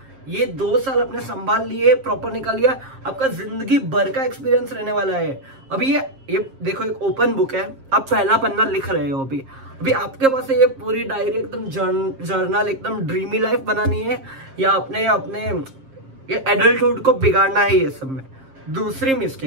ये 2 साल अपने संभाल लिए, प्रॉपर निकाल लिया, आपका जिंदगी भर का एक्सपीरियंस रहने वाला है। अभी ये देखो, एक ओपन बुक है, आप पहला पन्ना लिख रहे हो। अभी आपके पास ये पूरी डायरी एकदम जर्नल, एकदम ड्रीमी लाइफ बनानी है, या अपने ये एडल्टहुड को बिगाड़ना है ये सब में। दूसरी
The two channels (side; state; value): left; late; 7.5 ms